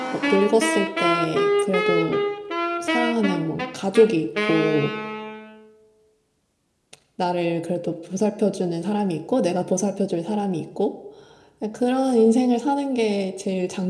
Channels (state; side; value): identical; both; correlation 1.00